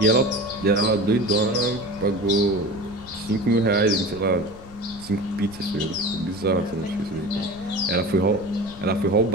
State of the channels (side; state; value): left; noise; rumble, 18 dB below the sound